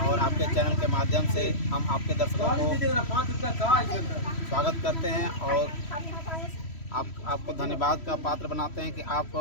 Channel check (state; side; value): late; right; 3.1 ms